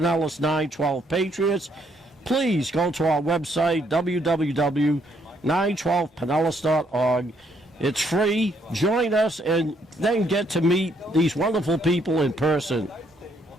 912 Patriots. Please go to our website, www.912pinellas.org. It's free. Join us and then get to meet these wonderful people in person.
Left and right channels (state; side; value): normal; both; correlation 0.71